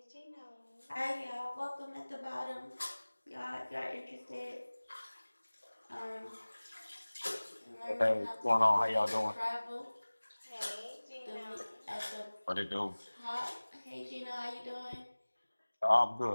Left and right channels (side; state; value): both; inverted; correlation -1.00